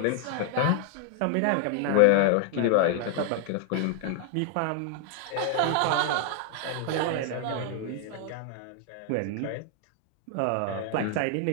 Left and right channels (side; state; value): both; different; correlation 0.00